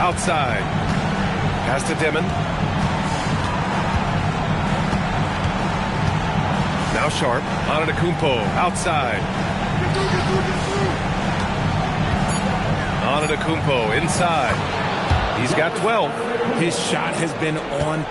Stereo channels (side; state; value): both; identical; correlation 1.00